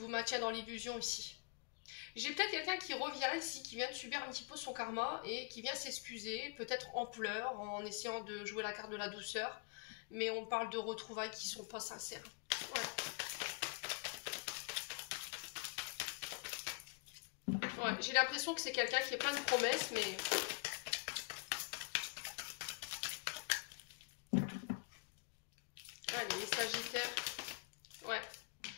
maintient dans l'illusion ici. J'ai peut-être quelqu'un qui revient ici, qui vient de subir un petit peu son karma et qui vient s'excuser, peut-être en pleurs, en essayant de jouer la carte de la douceur. Mais on parle de retrouvailles qui sont pas sincères. Ouais, j'ai l'impression que c'est quelqu'un qui est plein de promesses, mais... Allez, les sagittaires. Ouais.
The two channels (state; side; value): quieter; right; 33.2 dB